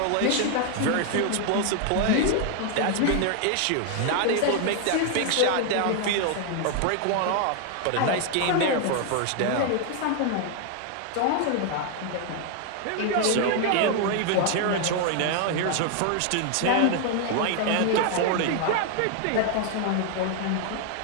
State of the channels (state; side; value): different; both; correlation 0.00